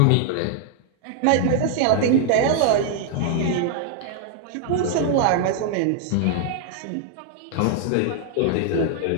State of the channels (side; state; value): both; different; correlation -0.01